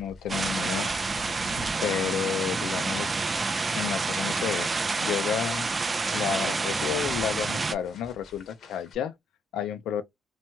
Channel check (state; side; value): normal; both; correlation 0.75